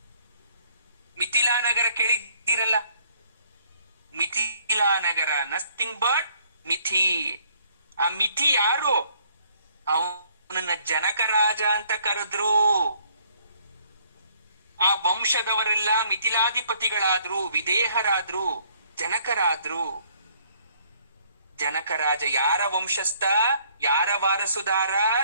ಮಿಥಿಲಾ ನಗರ ಕೇಳಿದ್ದೀರಲ್ಲ? ಮಿಥಿಲಾ ನಗರ ನಥಿಂಗ್ ಬಟ್ ಮಿಥಿ. ಆ ಮಿಥಿ ಯಾರು? ಅವನನ್ನ ಜನಕ ರಾಜ ಅಂತ ಕರೆದ್ರು. ಆ ವಂಶದವರೆಲ್ಲ ಮಿಥಿಲಾಧಿಪತಿಗಳಾದ್ರು, ವಿದೇಹರಾದ್ರು, ಜನಕರಾದ್ರು. ಜನಕರಾಜ ಯಾರ ವಂಶಸ್ಥ? ಯಾರ ವಾರಸುದಾರ?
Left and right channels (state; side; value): inverted; both; correlation -0.63